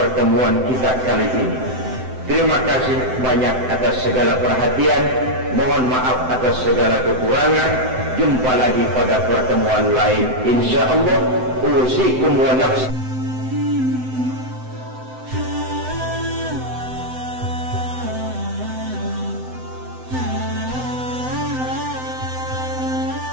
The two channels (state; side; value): late; left; 7.8 ms